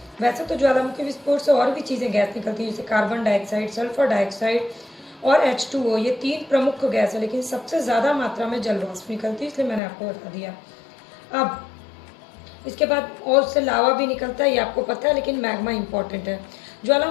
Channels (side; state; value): right; drops out; at 9.8 s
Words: वैसे तो ज्वालामुखी विस्फोट से और भी चीज़ें गैस निकलती हैं, जैसे कार्बन डाइऑक्साइड, सल्फर डाइऑक्साइड और H2O, ये 3 प्रमुख गैस है, लेकिन सबसे ज़्यादा मात्रा में जलवाष्प निकलती है, इसलिए मैंने आपको बता दिया। अब इसके बाद और उससे लावा भी निकलता है, ये आपको पता है, लेकिन मैग्मा इंपॉर्टेंट है।